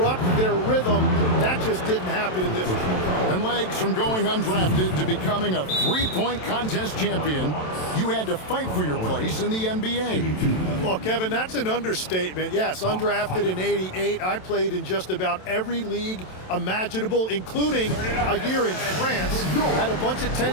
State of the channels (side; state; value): right; late; 27 ms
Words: their rhythm. That just didn't happen in this one. And legs from going undrafted to becoming a 3-point contest champion, you had to fight for your place in the NBA. Well, Kevin, that's an understatement. Yes, undrafted in '88. I played in just about every league imaginable, including a year in France. Had a bunch of